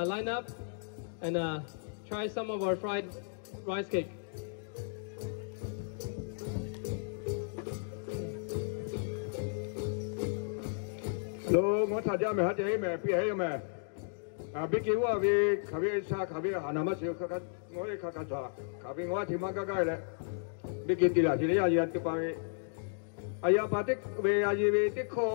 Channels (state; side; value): silent; right; digital silence